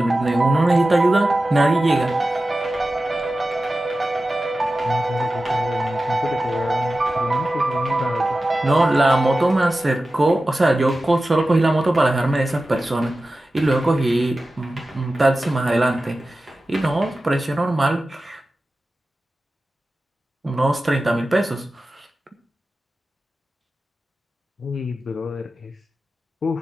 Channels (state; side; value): normal; both; correlation 0.94